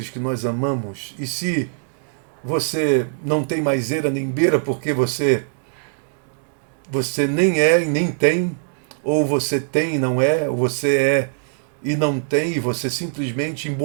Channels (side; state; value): left; silent; digital silence